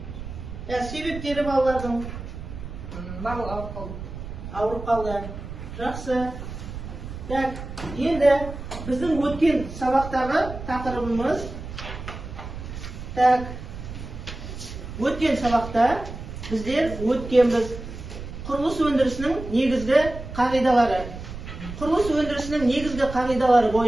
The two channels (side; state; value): right; noise; rumble, 10 dB below the sound